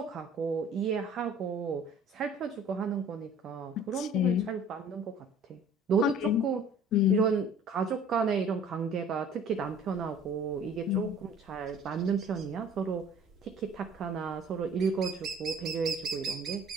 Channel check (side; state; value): both; normal; correlation 0.50